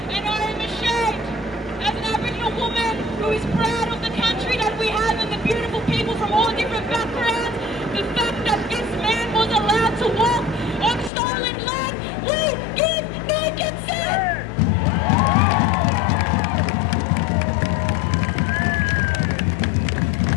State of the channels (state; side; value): drops out; right; at 11.1 s